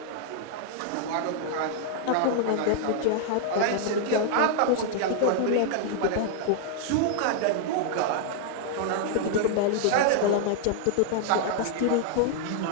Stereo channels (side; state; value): both; different; correlation -0.01